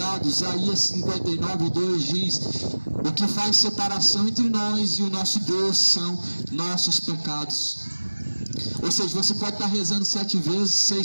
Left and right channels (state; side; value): inverted; both; correlation -1.00